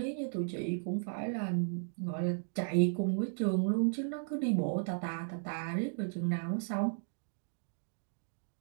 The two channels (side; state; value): left; silent; digital silence